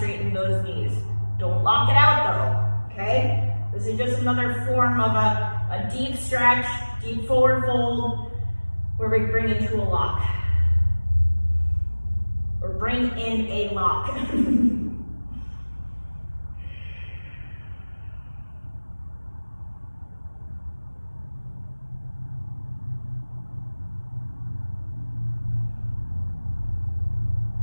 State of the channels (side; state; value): both; inverted; correlation -1.00